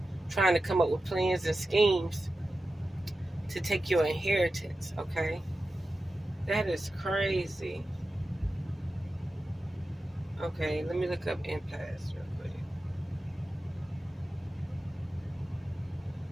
trying to come up with plans and schemes to take your inheritance, okay? That is crazy. Okay, let me look up impasse real quick.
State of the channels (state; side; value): normal; both; correlation 0.93